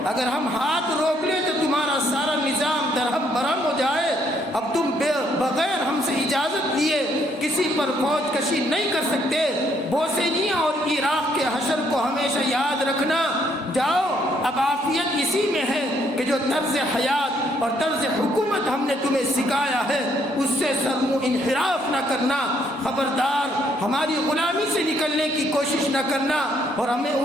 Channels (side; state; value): both; normal; correlation 0.69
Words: اگر ہم ہاتھ روک لیں تو تمہارا سارا نظام درہم برہم ہو جائے۔ اب تم بغیر ہم سے اجازت لیے کسی پر فوج کشی نہیں کر سکتے۔ بوسنیا اور عراق کے حشر کو ہمیشہ یاد رکھنا۔ جاؤ اب عافیت اسی میں ہے کہ جو طرز حیات اور طرز حکومت ہم نے تمہیں سکھایا ہے اس سے سرمو انحراف نہ کرنا۔ خبردار ہماری غلامی سے نکلنے کی کوشش نہ کرنا، اور ہمیں